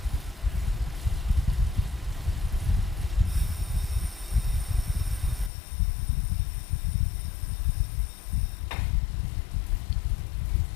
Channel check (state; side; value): drops out; right; at 5.5 s